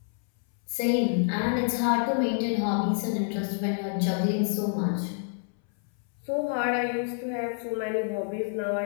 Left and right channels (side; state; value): right; silent; 59 dB below the other